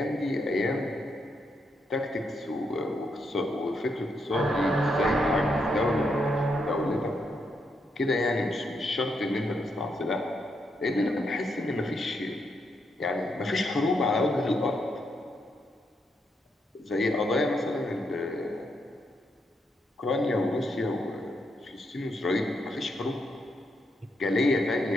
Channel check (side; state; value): both; normal; correlation 0.80